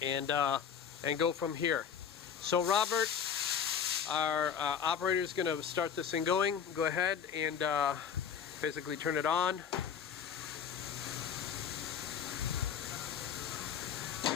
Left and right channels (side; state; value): right; quieter; 7.7 dB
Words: and go from here. So Robert, our operator, is going to start this thing going. Go ahead and basically turn it on.